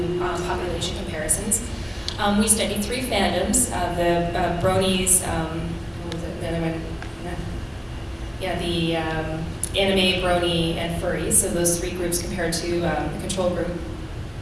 population comparisons. We studied 3 fandoms, the bronies, what was it, the other one? Yeah, the anime, brony, and furries. So those 3 groups compared to the control group.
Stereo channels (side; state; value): both; identical; correlation 1.00